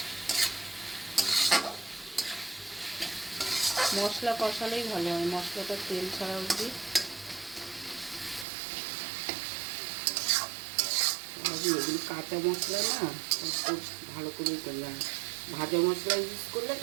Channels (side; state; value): left; drops out; at 8.5 s